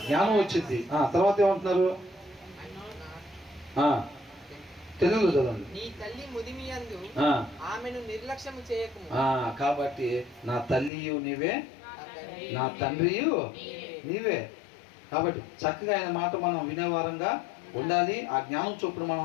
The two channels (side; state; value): right; drops out; at 10.9 s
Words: జ్ఞానం వచ్చింది. తర్వాత ఏమంటున్నారు? తెలుగులో చదవండి. నీ తల్లి ముదిమియందు ఆమెను నిర్లక్ష్యము చేయకుము. కాబట్టి నా తల్లియు నీవే, నా తండ్రియు నీవే. కాబట్టి చక్కగా ఆయన మాట మనం వినేవారంగా ఉండాలి. ఆ జ్ఞానం చొప్పున